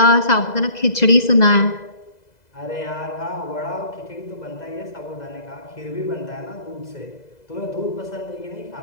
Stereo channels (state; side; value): late; right; 2.0 ms